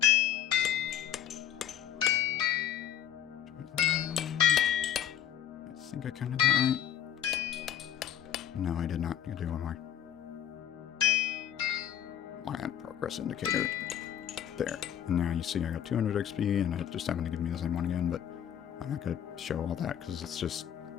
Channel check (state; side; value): quieter; right; 10.4 dB